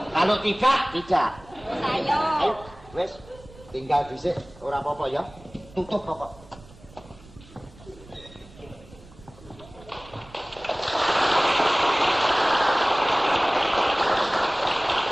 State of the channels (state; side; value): noise; right; rumble, 22 dB below the sound